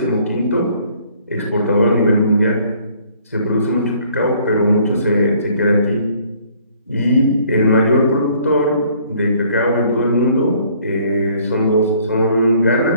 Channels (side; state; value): both; inverted; correlation -0.60